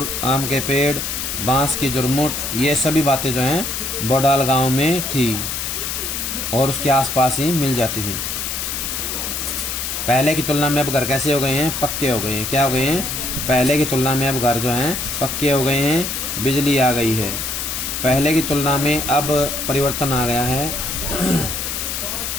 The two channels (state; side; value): noise; left; hiss, 3 dB below the sound